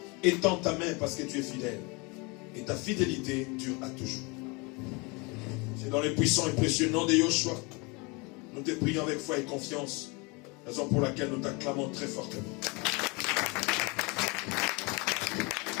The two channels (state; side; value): quieter; right; 28.4 dB